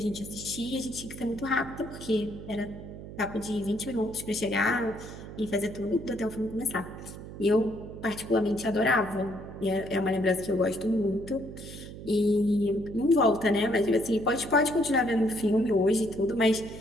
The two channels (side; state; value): right; noise; hum, 12 dB below the sound